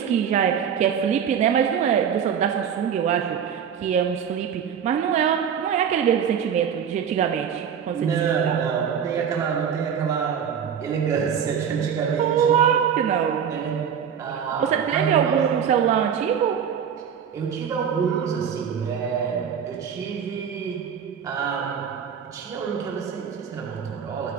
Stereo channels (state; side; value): quieter; left; 7.8 dB